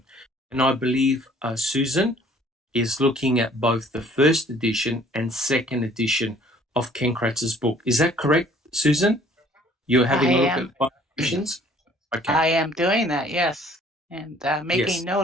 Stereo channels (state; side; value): normal; both; correlation 0.57